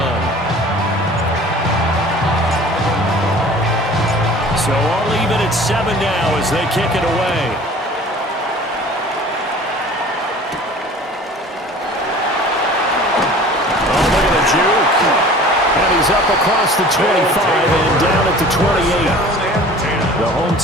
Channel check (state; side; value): normal; both; correlation 0.45